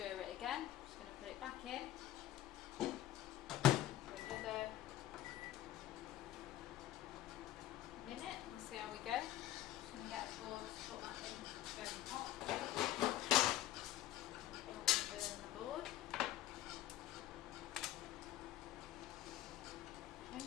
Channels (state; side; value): quieter; right; 13.5 dB